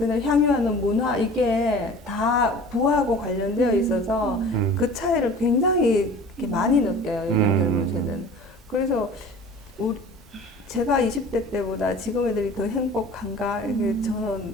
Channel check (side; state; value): both; normal; correlation 0.43